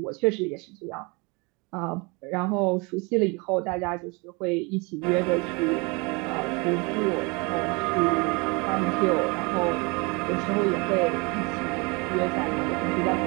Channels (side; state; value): left; quieter; 28.7 dB